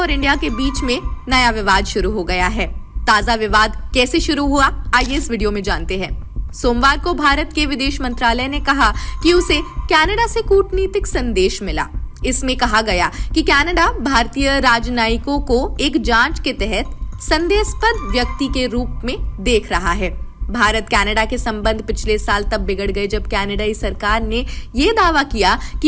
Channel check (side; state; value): both; identical; correlation 1.00